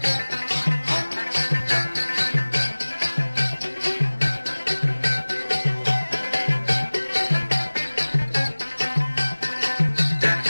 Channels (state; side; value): inverted; both; correlation -1.00